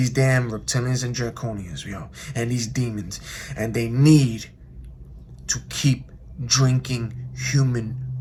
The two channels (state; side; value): identical; both; correlation 1.00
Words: damn reptilians and draconians, yo, and these demons. And they need to keep drinking human